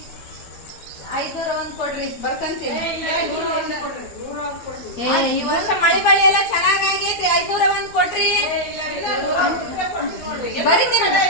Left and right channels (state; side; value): late; right; 12 ms